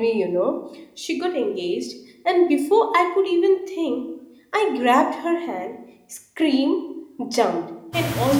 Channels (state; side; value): identical; both; correlation 1.00